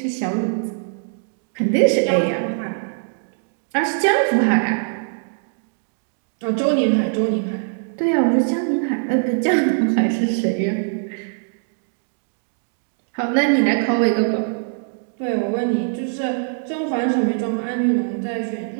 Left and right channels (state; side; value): silent; left; digital silence